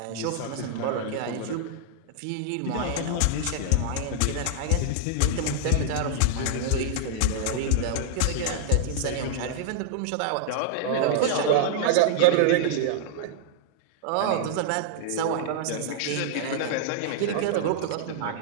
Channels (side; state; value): both; different; correlation -0.01